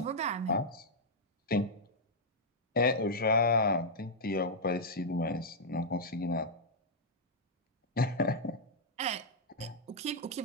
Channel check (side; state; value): both; normal; correlation -0.06